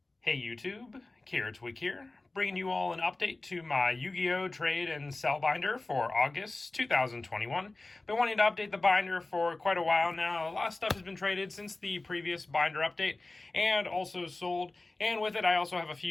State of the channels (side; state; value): right; quieter; 3.1 dB